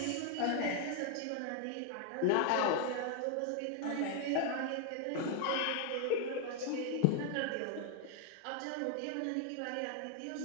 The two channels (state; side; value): different; both; correlation 0.00